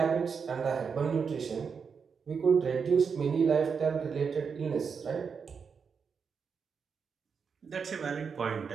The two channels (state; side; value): quieter; left; 6.0 dB